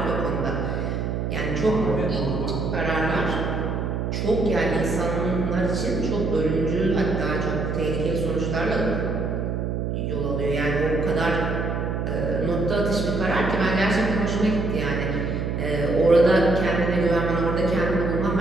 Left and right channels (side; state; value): right; noise; hum, 1 dB below the sound